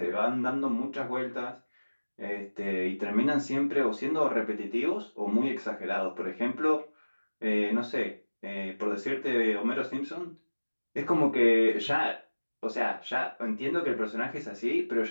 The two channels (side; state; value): both; inverted; correlation -1.00